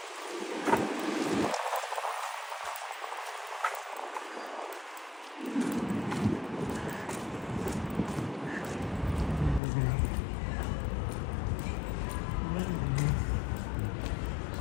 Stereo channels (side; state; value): right; drops out; at 9.6 s